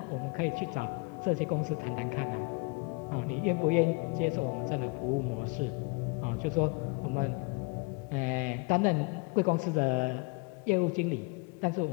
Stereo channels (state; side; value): quieter; right; 29.3 dB